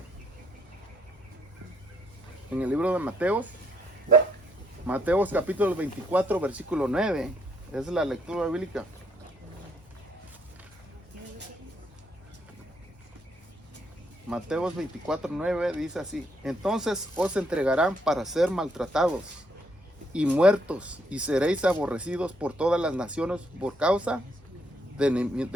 Mateos capítulo 24 versículo 9. Es la lectura bíblica. Mateos 24:9 dice así: entonces os entregarán para ser maltratados y muertos, y seréis aborrecidos por todas las naciones por causa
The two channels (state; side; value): normal; both; correlation 0.72